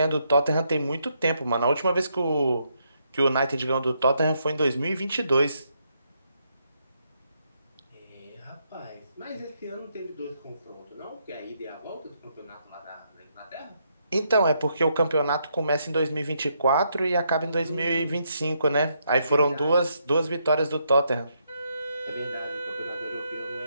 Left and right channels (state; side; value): inverted; both; correlation -0.77